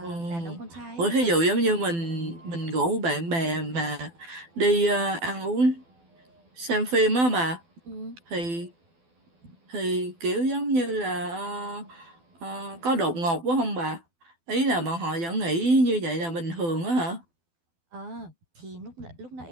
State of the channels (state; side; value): late; left; 12 ms